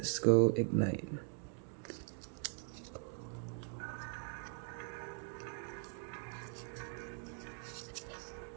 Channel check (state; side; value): silent; left; 50 dB below the other